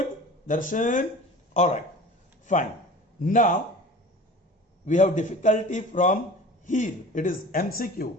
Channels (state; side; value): normal; both; correlation 0.39